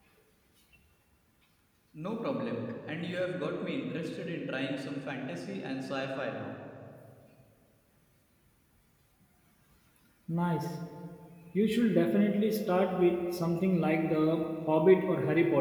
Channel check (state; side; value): identical; both; correlation 1.00